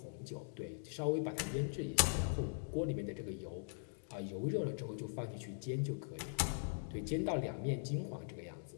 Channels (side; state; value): right; silent; digital silence